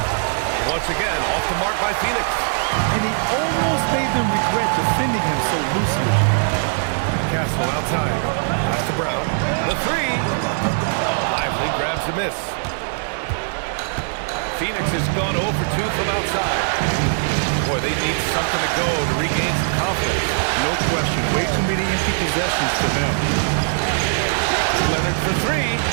Once again, off the mark by Phoenix. And he almost made them regret defending him so loosely. Castle outside. Pass to Brown. The 3. Lively grabs a miss. Phoenix has gone 0 for 2 from outside. Boy, they need something to go to regain some confidence. No question. Way too many empty possessions for them. Leonard for 3.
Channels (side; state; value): left; silent; digital silence